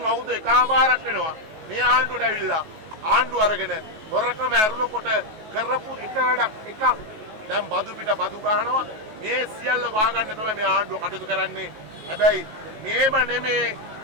අවුරුදු එකමාරක් වෙනවා මේ ආණ්ඩුවට ඇවිල්ලා ආණ්ඩුව අරගෙන හොරකම ඇරුණකොට කරපු එක වැඩක් එකක්. දැන් බදු පිට බදු ගහනවා. මේ සියල්ල වහගන්න තමයි මේ ආණ්ඩුව කටයුතු කරන්නේ. හැබැයි මේම නෙමේ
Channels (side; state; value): left; late; 19 ms